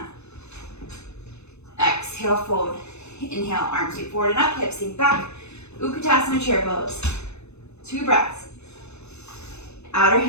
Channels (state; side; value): late; right; 0.81 ms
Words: Exhale, fold. Inhale, arms sweep forward and up, hips sink back. Uttanasana chair pose. 2 breaths. outer